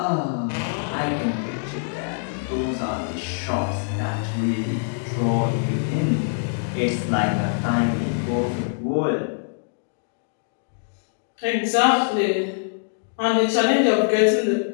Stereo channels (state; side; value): silent; right; digital silence